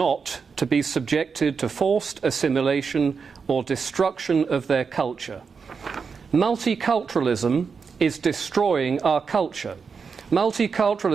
to be subjected to forced assimilation or destruction of their culture. Multiculturalism is destroying our culture.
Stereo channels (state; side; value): quieter; left; 5.5 dB